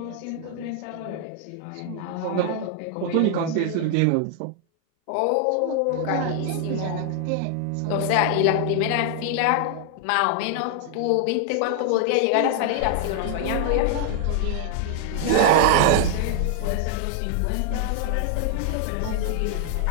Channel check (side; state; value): both; different; correlation 0.00